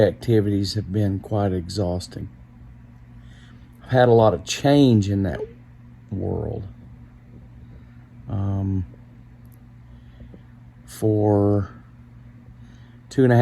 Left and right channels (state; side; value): identical; both; correlation 1.00